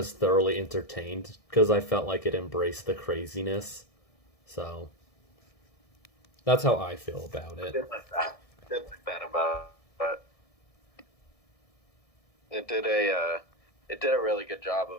thoroughly entertained because I felt like it embraced the craziness. So, that's how I feel about I it. did like that. I did like that about it. It did a really good job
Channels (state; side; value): late; right; 1.6 ms